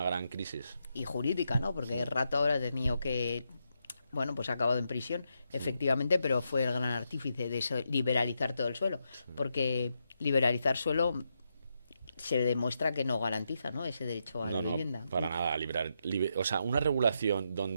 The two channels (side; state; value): both; inverted; correlation -0.83